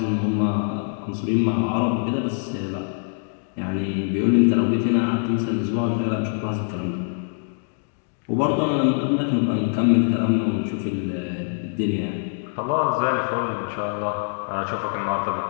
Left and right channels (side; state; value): right; silent; digital silence